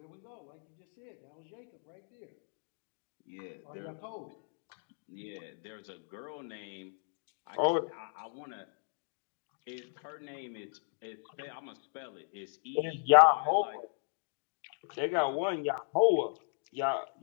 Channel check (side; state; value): right; silent; digital silence